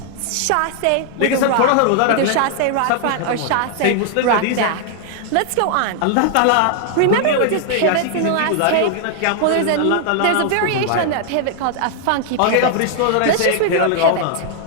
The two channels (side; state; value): both; different; correlation 0.00